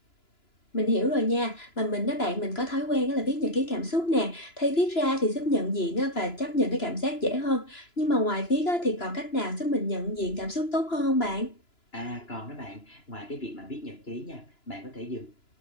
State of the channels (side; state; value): right; late; 2.9 ms